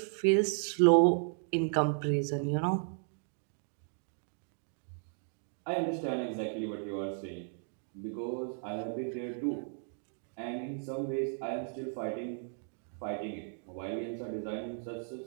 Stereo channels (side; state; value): left; silent; digital silence